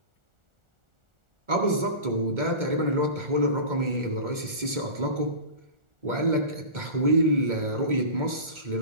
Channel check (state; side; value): late; left; 2.2 ms